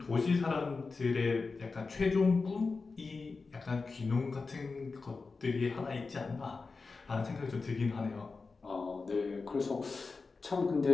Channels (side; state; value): right; quieter; 4.2 dB